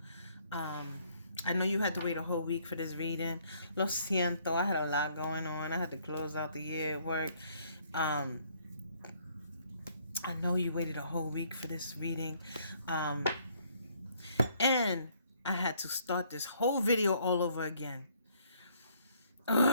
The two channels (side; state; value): both; inverted; correlation -0.65